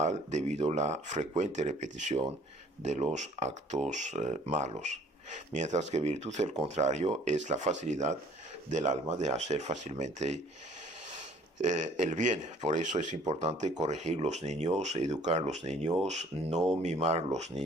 debido a la frecuente repetición de los actos malos. Mientras que virtud, el contrario, es la facilidad del alma de hacer fácilmente el bien. Por eso es importante corregir los niños, educar los niños, no mimar los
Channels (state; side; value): normal; both; correlation 0.56